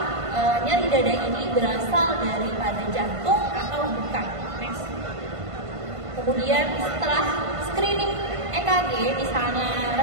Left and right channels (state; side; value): late; left; 1.5 ms